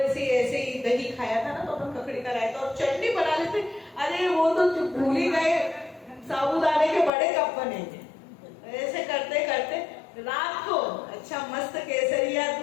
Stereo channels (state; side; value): drops out; right; at 7.1 s